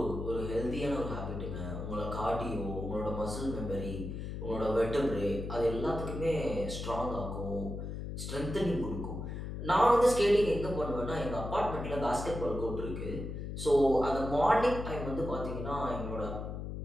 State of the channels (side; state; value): left; noise; hum, 6 dB below the sound